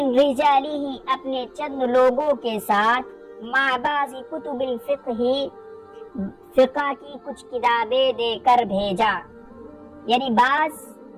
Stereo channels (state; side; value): identical; both; correlation 1.00